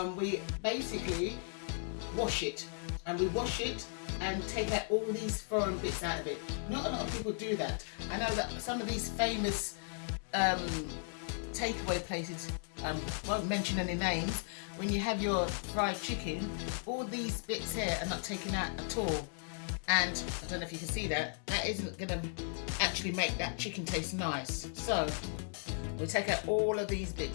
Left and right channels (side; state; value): right; silent; 54 dB below the other